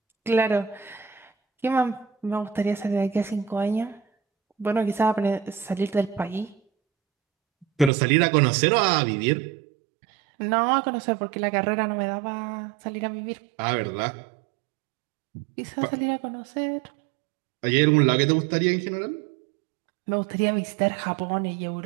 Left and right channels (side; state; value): left; drops out; at 7.9 s